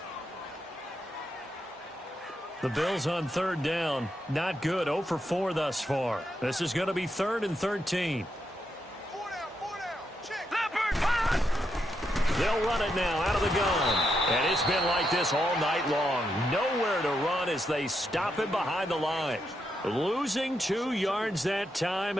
The Bills on third down. Not good. 0 for 4 thus far. This is going to be 3rd and 13. They'll run it now out of the gun. And it's been like this all night long. Nowhere to run as they stop him behind the line. Losing 2 yards that time,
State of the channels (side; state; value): both; normal; correlation 0.82